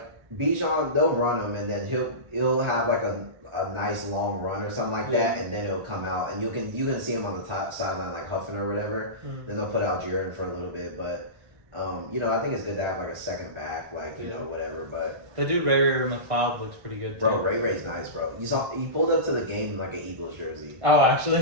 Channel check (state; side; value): late; left; 1.4 ms